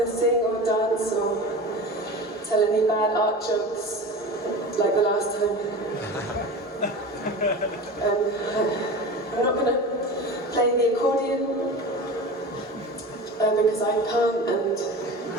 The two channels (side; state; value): both; normal; correlation 0.32